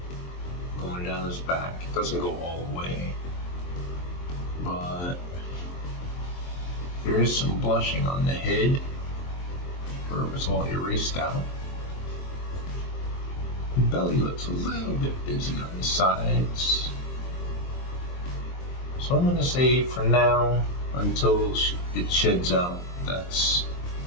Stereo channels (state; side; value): late; right; 23 ms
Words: going down his back. It doesn't go all the way, but there is some blushing on the head where it was all erased out. The belly looks a little bit busy on the sides. So I'm going to say for now, until it sheds out, that's